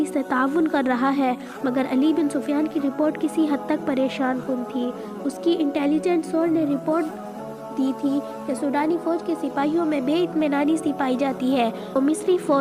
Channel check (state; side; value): identical; both; correlation 1.00